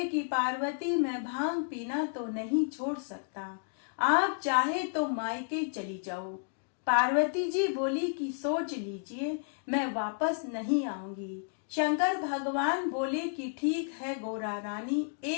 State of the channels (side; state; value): right; silent; digital silence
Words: कि पार्वती, मैं भांग पीना तो नहीं छोड़ सकता। आप चाहे तो मायके चली जाओ। पार्वती जी बोली कि सोच लीजिए, मैं वापस नहीं आऊंगी। शंकर भगवान बोले कि ठीक है गोरा रानी,